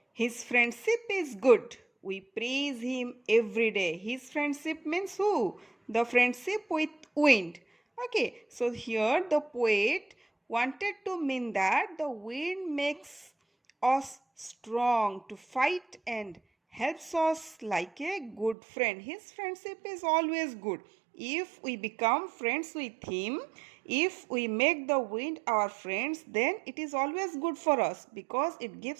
His friendship is good. We praise him every day. His friendship means who? The friendship with wind. Okay, so here the poet wanted to mean that the wind makes us strong to fight and helps us like a good friend. His friendship is always good. If we become friends with him, if we make the wind our friends, then it is always good for us because it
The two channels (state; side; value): drops out; left; at 18.6 s